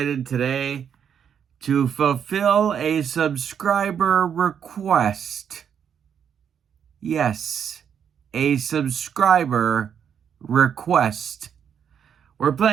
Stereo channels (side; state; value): left; quieter; 8.1 dB